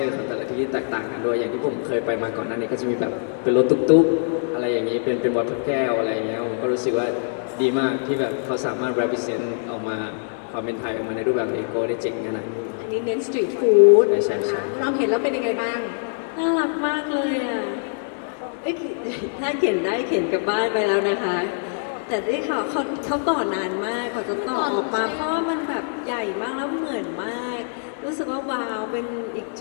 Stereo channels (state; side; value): silent; right; digital silence